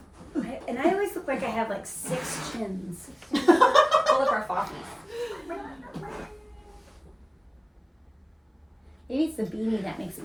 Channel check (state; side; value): identical; both; correlation 1.00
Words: And I always look like I have like 6 chins. full of our foffies. Maybe it's the beanie that makes